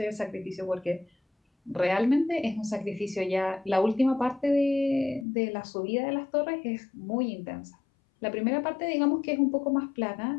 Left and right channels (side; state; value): right; drops out; at 5.2 s